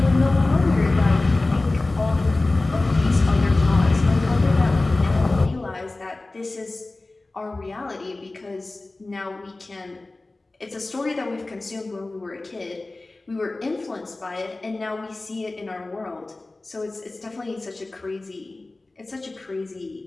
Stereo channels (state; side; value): quieter; right; 3.1 dB